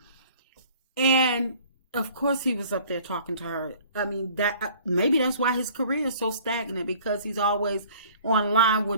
and of course he was up there talking to her. I mean, that maybe that's why his career is so stagnant, because he's always online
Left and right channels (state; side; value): inverted; both; correlation -0.51